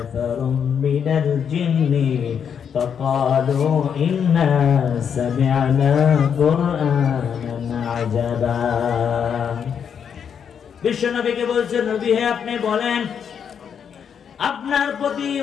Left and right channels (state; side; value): quieter; right; 7.6 dB